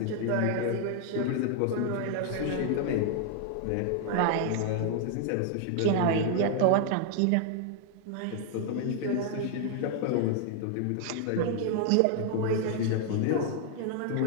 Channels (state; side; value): different; both; correlation 0.00